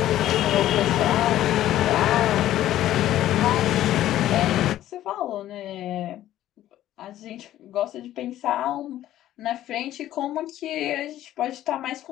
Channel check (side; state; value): right; quieter; 13.2 dB